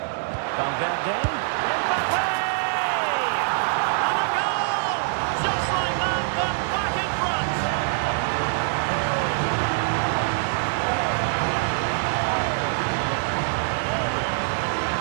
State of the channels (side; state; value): left; silent; 60 dB below the other